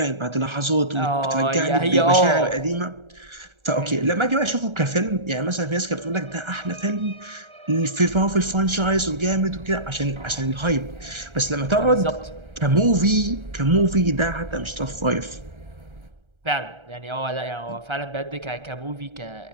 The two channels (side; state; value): left; late; 1.3 ms